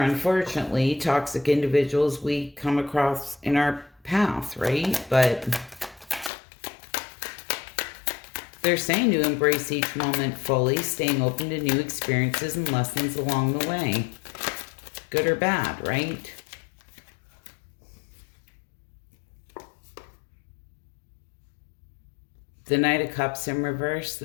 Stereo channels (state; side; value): drops out; right; at 6.3 s